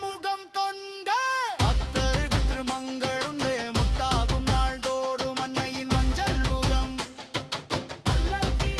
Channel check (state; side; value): identical; both; correlation 1.00